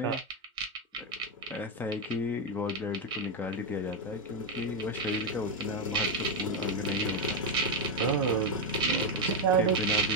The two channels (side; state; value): both; normal; correlation 0.05